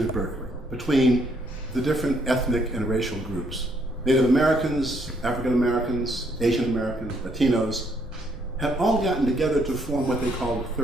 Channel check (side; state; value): both; normal; correlation 0.70